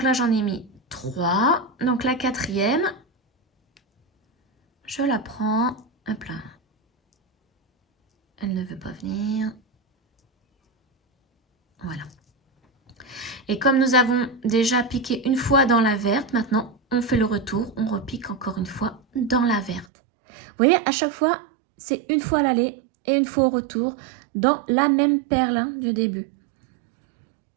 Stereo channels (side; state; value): left; drops out; at 19.9 s